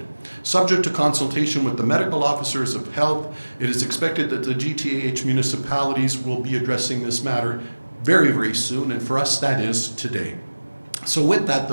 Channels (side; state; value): both; inverted; correlation -1.00